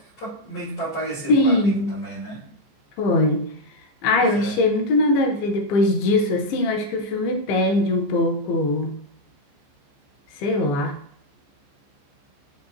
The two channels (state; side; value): late; right; 15 ms